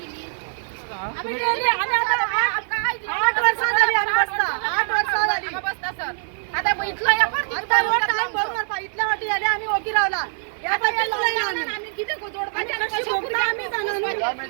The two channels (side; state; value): left; silent; digital silence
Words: आम्ही गेली आम्ही आता 8 वर्षां झाली आम्ही बसता 8 वर्षां झाली बसता सर आता इथलं या आता रोड टाइम बरोबर इथल्या वाटी झाली आम्ही ओकी रावला या पाठी आम्ही किती जोडपाचे कशी भोगता आम्ही जाणार